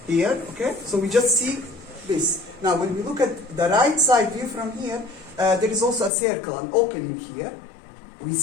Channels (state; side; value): drops out; right; at 6.1 s